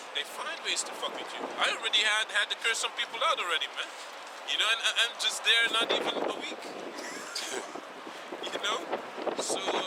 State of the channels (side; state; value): both; identical; correlation 1.00